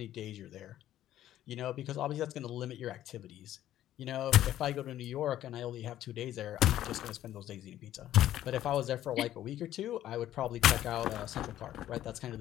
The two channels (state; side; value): quieter; right; 12.7 dB